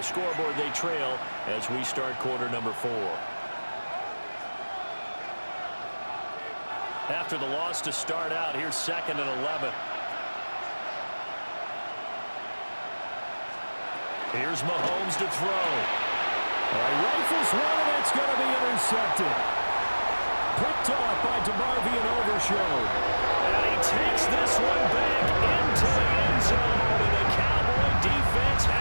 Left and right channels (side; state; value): both; inverted; correlation -1.00